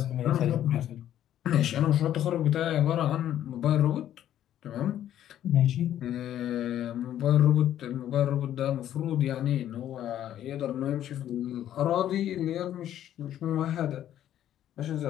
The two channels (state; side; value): quieter; right; 11.4 dB